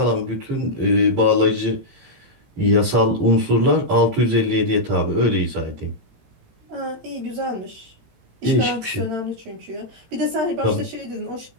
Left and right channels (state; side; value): late; left; 18 ms